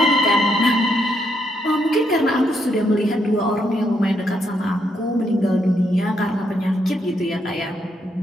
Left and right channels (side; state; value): both; normal; correlation 0.77